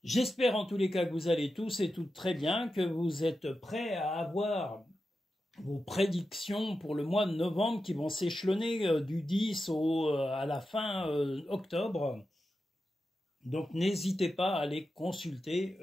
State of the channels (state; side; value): normal; both; correlation 0.90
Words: J'espère en tous les cas que vous allez tous et toutes très bien, que vous êtes prêts à avoir vos prédictions pour le mois de novembre qui vont s'échelonner du 10 à la fin octobre. Donc n'hésitez pas à les consulter